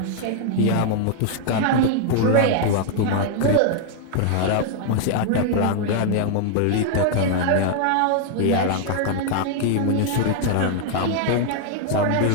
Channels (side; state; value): both; different; correlation 0.00